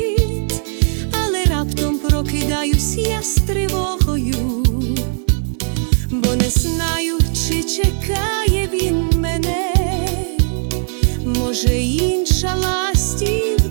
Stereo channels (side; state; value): left; silent; 68 dB below the other